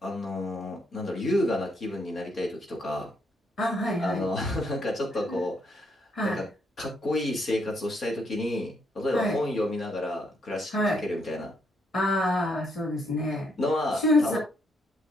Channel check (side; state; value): both; normal; correlation 0.74